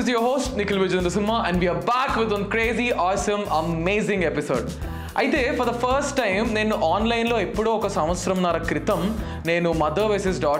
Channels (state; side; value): identical; both; correlation 1.00